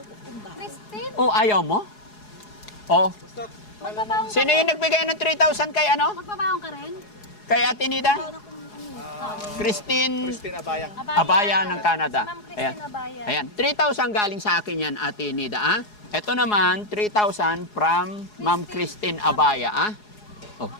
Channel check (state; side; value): late; right; 4.8 ms